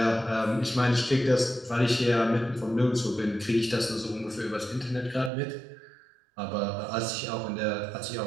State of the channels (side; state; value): left; drops out; at 5.3 s